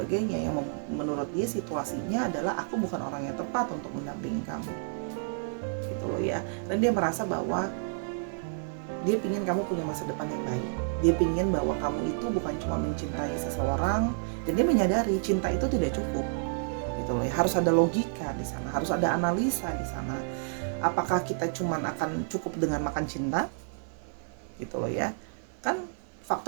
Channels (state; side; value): silent; left; 58 dB below the other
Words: yang menurut dia situasinya adalah aku bukan orang yang tepat untuk mendampingi kamu gitu loh ya. Dan dia merasa bahwa dia pingin kamu punya masa depan yang baik, dia pingin bahwa kamu itu bukan cuma mencintai seseorang, dan dia menyadari cinta itu tidak cukup gitu loh ya. Harus ada logika di sana, harus ada analisa di sana. Apakah kita cuma akan cukup dengan makan cinta gitu loh ya, kan